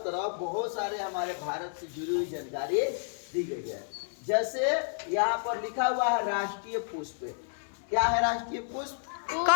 तरफ बहुत सारे हमारे भारत से जुड़ी हुई जानकारी दी गई है। जैसे यहाँ पर लिखा हुआ है राष्ट्रीय पुष्प। क्या है राष्ट्रीय पुष्प?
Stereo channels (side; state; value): right; silent; 57 dB below the other